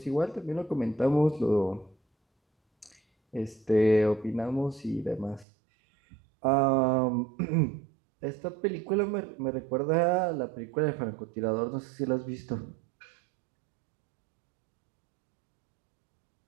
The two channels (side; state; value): left; drops out; at 5.5 s